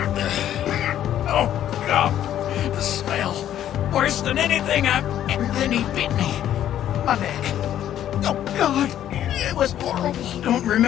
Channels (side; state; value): right; quieter; 11.3 dB